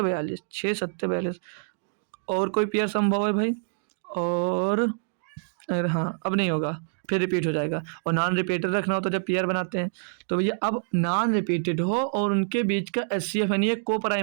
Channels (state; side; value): silent; left; digital silence